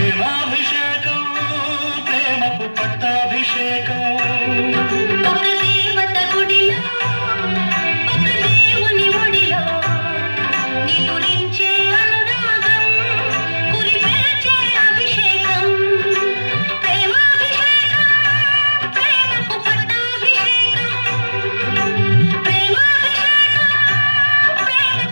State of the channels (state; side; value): inverted; both; correlation -1.00